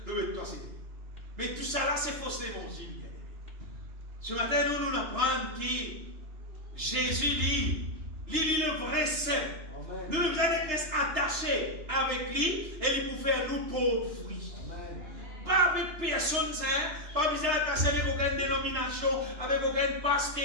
toi c'est. Mais tout ça là, c'est faux l'évangile, bien aimé. Ce matin, nous apprenons que Jésus lit le vrai saint. Nous devons être attachés avec lui et il peut faire nous pauvres fruits. Pas avec personne, pas besoin d'attacher avec aucune dénomination, avec aucun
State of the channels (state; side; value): late; left; 3.3 ms